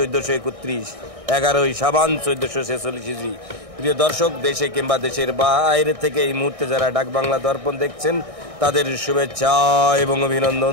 11 শাবান 1446 হিজরি। প্রিয় দর্শক, দেশে কিংবা দেশের বাইরে থেকে এই মুহূর্তে যারা ডাক বাংলা দর্পণ দেখছেন তাদের শুভেচ্ছা এবং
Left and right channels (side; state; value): left; late; 1.6 ms